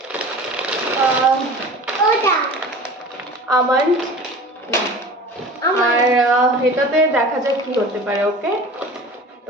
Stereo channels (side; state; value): both; normal; correlation 0.39